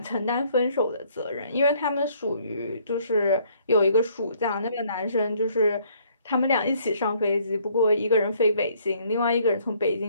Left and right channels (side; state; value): both; inverted; correlation -0.62